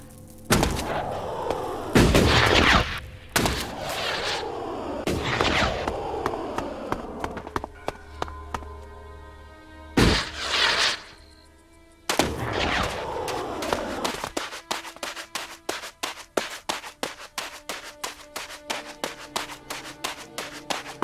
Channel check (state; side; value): identical; both; correlation 1.00